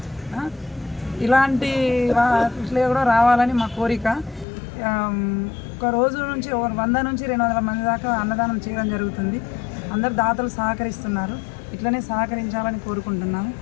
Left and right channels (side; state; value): right; drops out; at 4.5 s